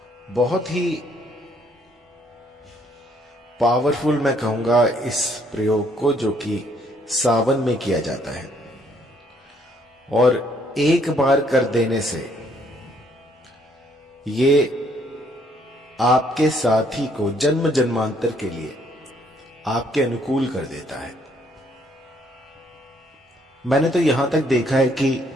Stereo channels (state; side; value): normal; both; correlation 0.67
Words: बहुत ही पावरफुल मैं कहूंगा इस प्रयोग को, जो कि सावन में किया जाता है और एक बार कर देने से ये आपके साथी को जन्म जन्मांतर के लिए आपके अनुकूल कर देता है। मैंने तो यहां तक देखा है कि